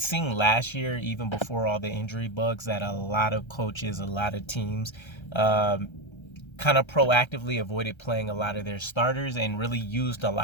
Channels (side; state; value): right; late; 1.3 ms